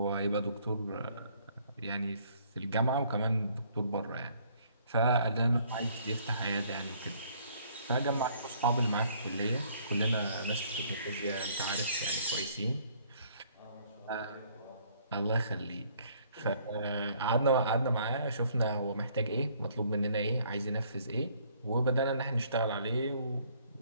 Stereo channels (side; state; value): both; inverted; correlation -0.62